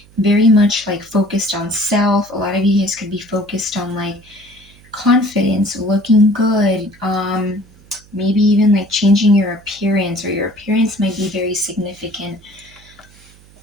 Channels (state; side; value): noise; right; hum, 26 dB below the sound